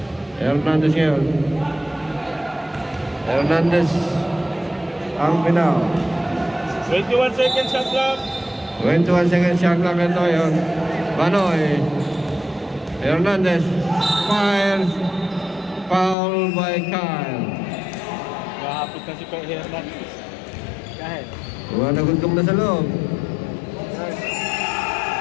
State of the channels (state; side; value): drops out; right; at 16.2 s